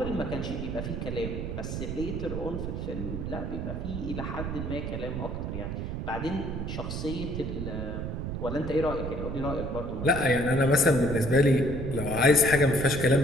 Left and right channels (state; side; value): noise; right; rumble, 4 dB below the sound